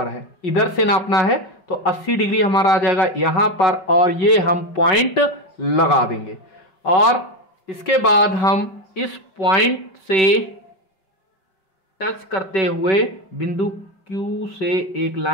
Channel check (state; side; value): late; right; 5.2 ms